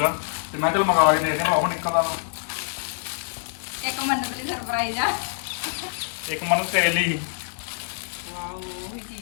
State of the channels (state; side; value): silent; right; digital silence